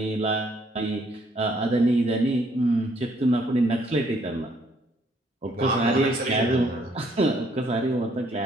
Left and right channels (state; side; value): normal; both; correlation 0.67